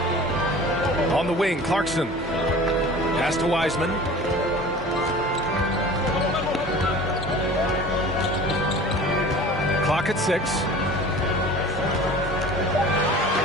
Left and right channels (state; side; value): normal; both; correlation 0.42